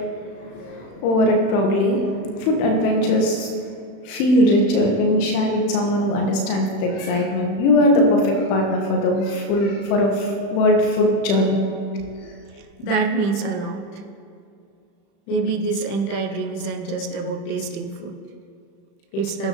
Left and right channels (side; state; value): right; late; 35 ms